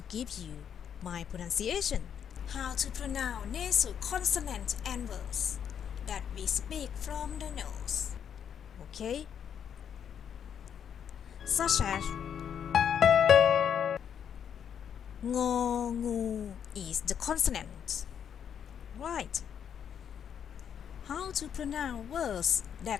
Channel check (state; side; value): quieter; right; 8.3 dB